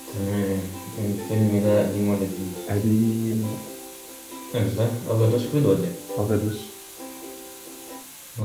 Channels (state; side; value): identical; both; correlation 1.00